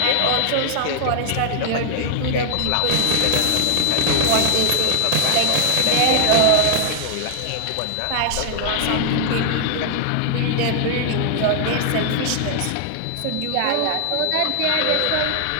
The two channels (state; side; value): different; both; correlation 0.00